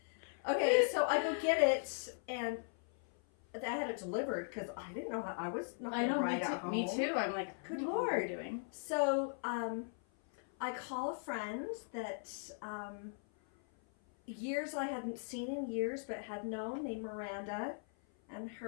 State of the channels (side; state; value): right; silent; 52 dB below the other